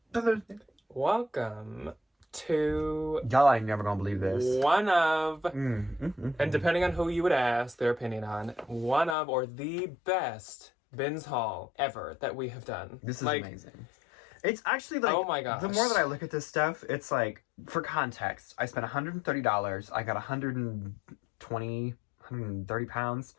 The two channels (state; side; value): drops out; right; at 9.2 s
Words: Welcome to Y'all ain't never gonna believe this. one of, and depending on who you would ask their opinion on, one of or the best bins haul ever that we have done. This is amazing. It's actually like, oh my gosh. The more that I look at this stuff, it's like, for context, I spent $130. I got 130 pounds